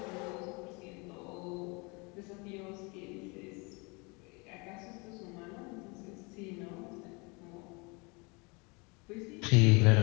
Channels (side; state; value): right; quieter; 29.1 dB